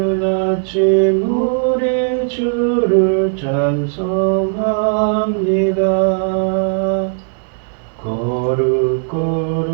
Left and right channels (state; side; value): silent; left; digital silence